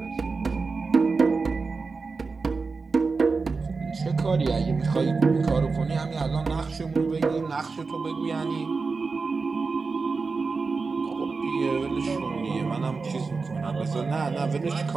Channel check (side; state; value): left; quieter; 4.4 dB